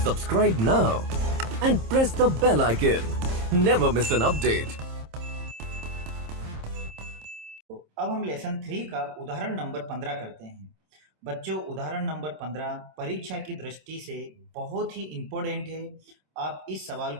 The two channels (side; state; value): left; late; 26 ms